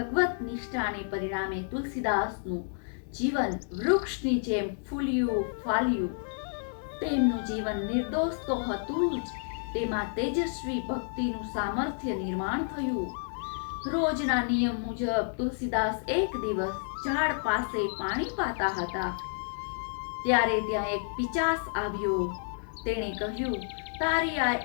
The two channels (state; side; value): silent; right; digital silence